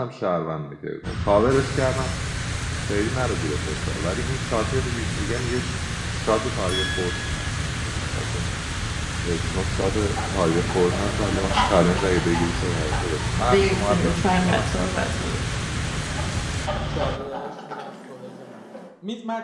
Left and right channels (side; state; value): both; identical; correlation 1.00